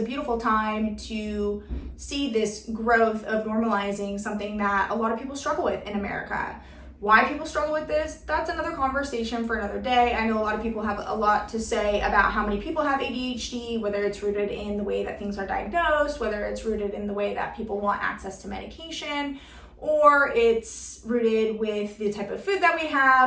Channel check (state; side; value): identical; both; correlation 1.00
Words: beautiful time to see this growth of normalizing something that a lot of people struggle with in America. Why people struggle with this, that's another conversation for another day. I know a lot of people have a lot to say about how many people have ADHD, whether it's rooted in the way that things are diagnosed, whether it's rooted in the way that people want access to medication, or it's rooted with the type of food that we